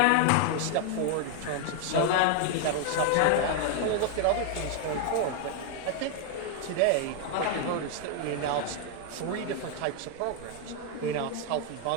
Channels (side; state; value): both; different; correlation 0.00